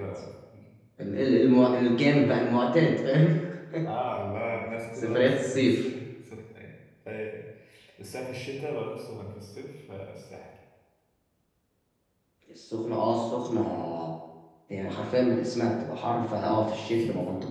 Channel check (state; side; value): identical; both; correlation 1.00